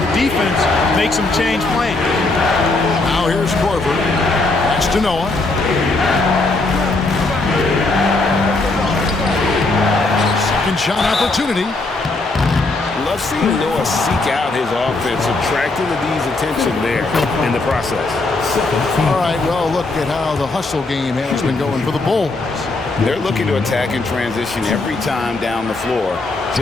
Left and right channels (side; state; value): right; quieter; 3.2 dB